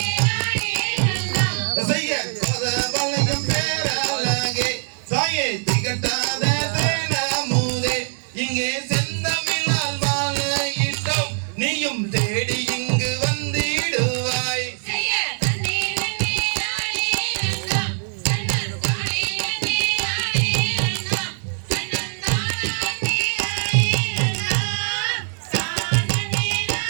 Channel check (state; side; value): silent; left; digital silence